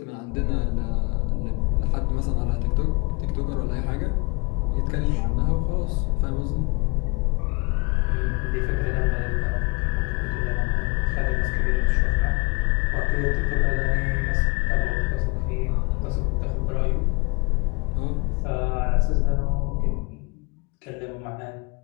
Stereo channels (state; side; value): quieter; right; 28.3 dB